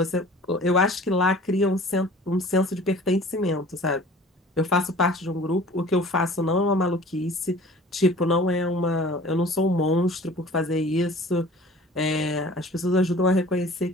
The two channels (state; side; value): normal; both; correlation 0.46